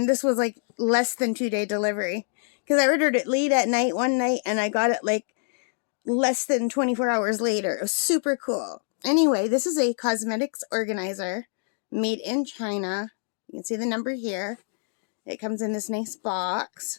this was like less than 2-day delivery. Because I ordered it late at night one night and I got it like less than 24 hours later. It was super cool. Anyway, this is a cosmetics organizer made in China. You can see the number here. It comes in this nice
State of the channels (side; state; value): right; silent; 59 dB below the other